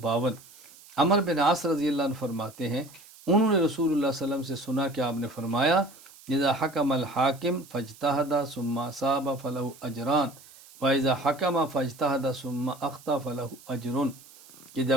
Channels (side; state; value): right; noise; hiss, 22 dB below the sound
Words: عمر بن عاص رضی اللہ عنہ فرماتے ہیں انہوں نے رسول اللہ صلی اللہ علیہ وسلم سے سنا کہ آپ نے فرمایا اذا حکم الحاکم فاجتہد ثم اصاب فلہ اجران واذا حکم فاجتہد ثم اخطا فلہ اجر، کہ